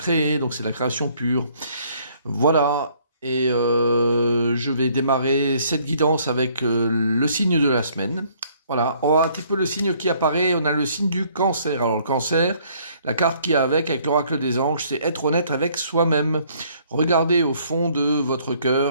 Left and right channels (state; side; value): inverted; both; correlation -0.63